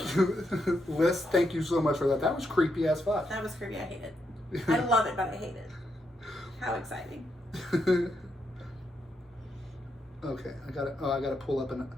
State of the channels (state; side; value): normal; both; correlation 0.81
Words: you, Liss. Thank you so much for that. That was creepy as fuck. That was creepy. I hate it. I love it, but I hate it. How exciting. Okay, I gotta pull up